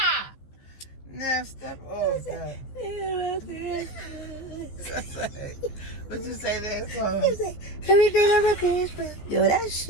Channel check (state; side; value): late; right; 15 ms